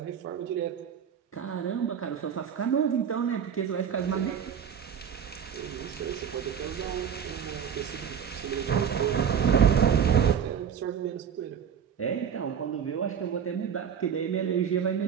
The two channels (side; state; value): left; quieter; 7.9 dB